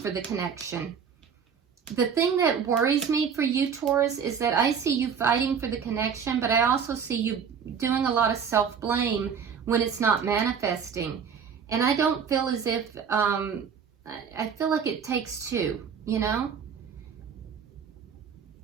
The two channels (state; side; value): quieter; left; 6.9 dB